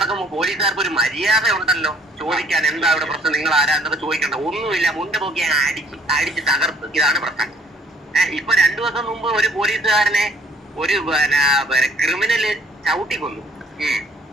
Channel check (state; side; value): normal; both; correlation 0.60